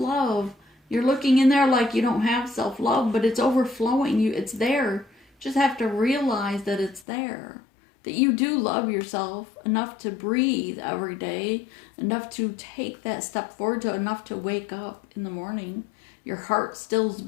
You're looking in there like you don't have self-love, but it's overflowing. It's there. Just have to realize that it's there. That you do love yourself enough to breathe every day, enough to take that step forward, enough to wake up in the morning. Your heart still's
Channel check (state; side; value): drops out; right; at 7.1 s